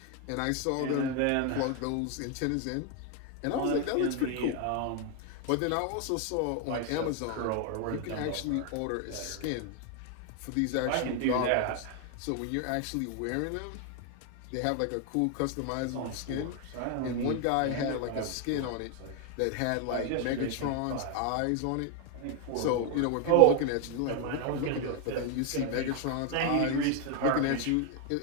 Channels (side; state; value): both; different; correlation 0.01